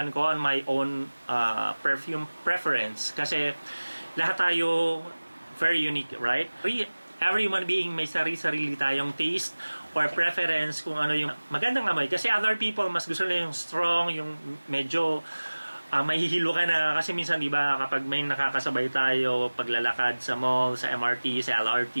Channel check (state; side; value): inverted; both; correlation -1.00